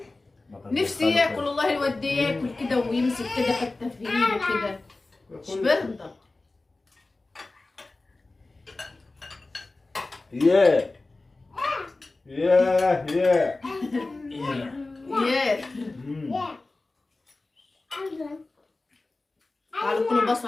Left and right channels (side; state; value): right; quieter; 3.2 dB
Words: نفسي ياكل والله. الواد ده ياكل كده ويمسك كده حته في ايده كده. مش برضه. ياه ياه ياه ياه. تعالوا كلوا